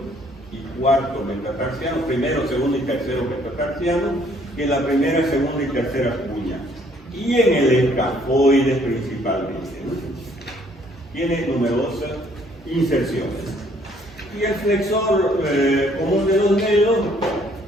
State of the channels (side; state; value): both; normal; correlation 0.63